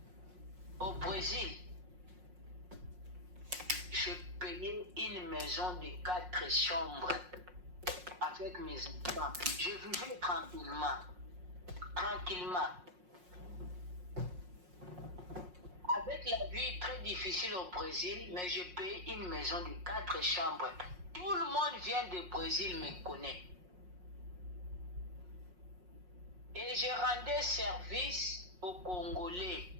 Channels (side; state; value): left; late; 5.5 ms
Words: Au Brésil, je payais une maison de 4 chambres avec mes enfants. Je vivais tranquillement. Tranquillement. Avec la vie très difficile au Brésil, mais je paye une maison de 4 chambres. Tout le monde vient du Brésil me connaît. Et je rendais service aux Congolais